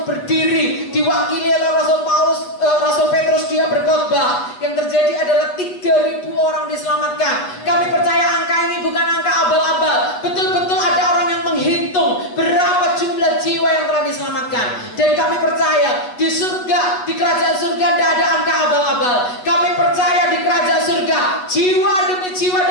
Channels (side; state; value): right; late; 8.1 ms